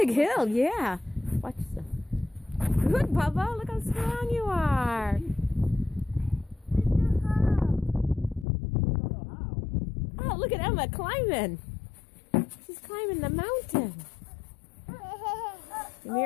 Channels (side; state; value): right; drops out; at 8.5 s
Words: hill, yeah. Watch this. Good, Bubba. Look how strong you are. I don't know how. Oh, look at Emma climbing. She's climbing the mountain. Give me